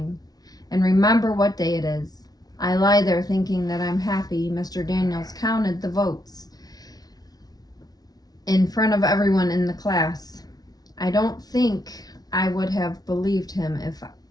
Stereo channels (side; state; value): right; late; 0.19 ms